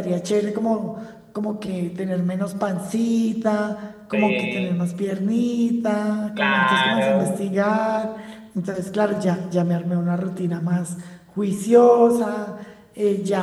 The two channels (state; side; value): identical; both; correlation 1.00